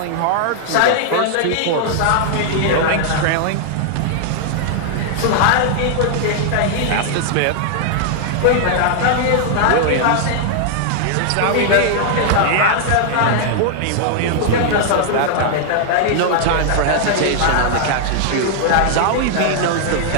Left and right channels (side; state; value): both; different; correlation -0.01